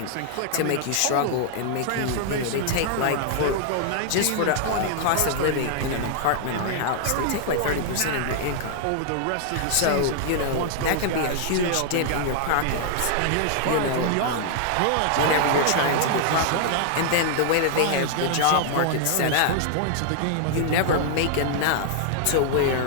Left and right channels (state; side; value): different; both; correlation -0.01